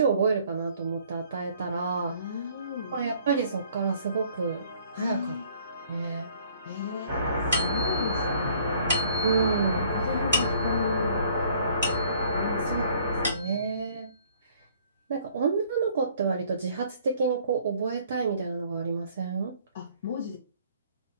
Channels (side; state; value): both; inverted; correlation -0.59